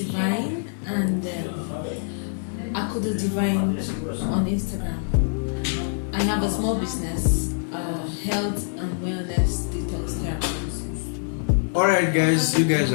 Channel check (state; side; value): silent; right; digital silence